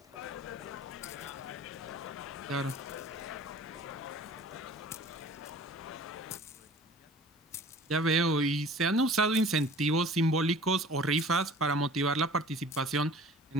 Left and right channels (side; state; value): both; normal; correlation 0.46